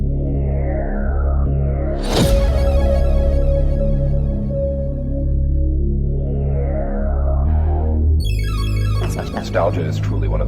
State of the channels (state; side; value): identical; both; correlation 1.00